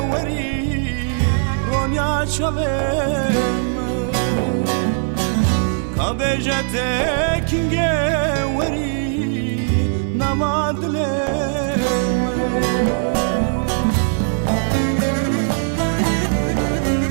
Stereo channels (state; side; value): silent; left; digital silence